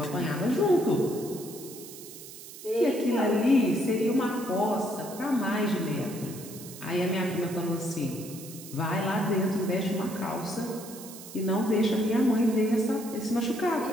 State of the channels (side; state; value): right; noise; hiss, 15 dB below the sound